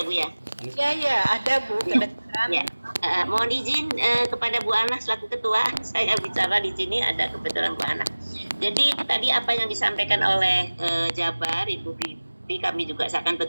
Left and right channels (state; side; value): inverted; both; correlation -1.00